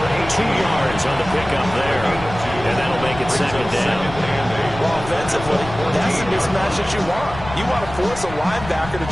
2 yards on the pickup there. And that'll make it 2nd down. Well, offensively, that's the mismatch that you want. You want to force a linebacker to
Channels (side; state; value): left; noise; rumble, 12 dB below the sound